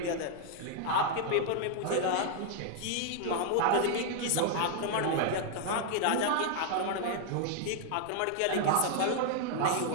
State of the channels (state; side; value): different; both; correlation 0.00